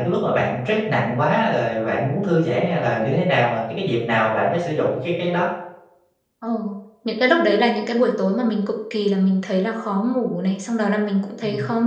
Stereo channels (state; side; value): identical; both; correlation 1.00